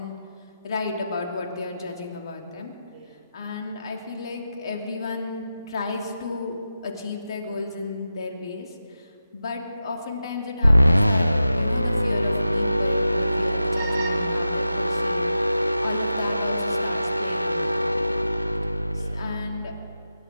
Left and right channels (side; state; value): both; inverted; correlation -0.91